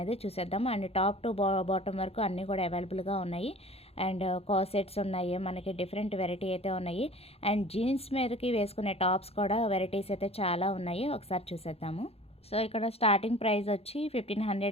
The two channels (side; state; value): right; late; 0.29 ms